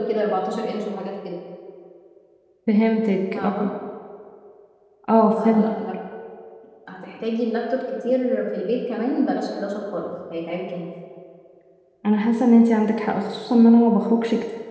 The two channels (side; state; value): both; identical; correlation 1.00